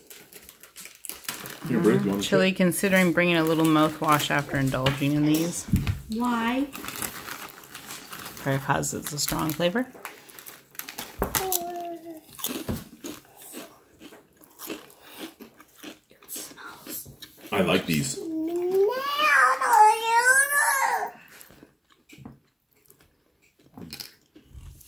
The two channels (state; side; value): identical; both; correlation 1.00